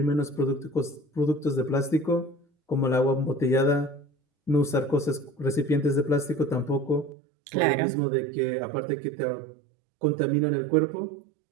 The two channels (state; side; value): drops out; left; at 7.2 s